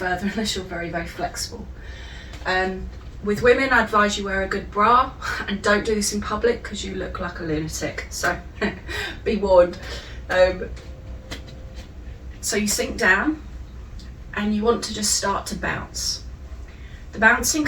unless you're very flexible. With women, I advise you wear a good bra, and don't do this in public because you look like a lunatic, so be warned. So you sink down, and you want to just start to bounce. The bouncing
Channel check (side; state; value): both; identical; correlation 1.00